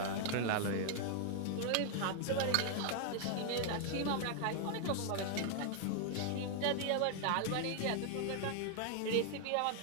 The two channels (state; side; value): different; both; correlation 0.00